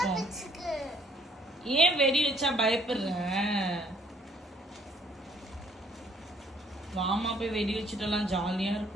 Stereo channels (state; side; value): normal; both; correlation 0.63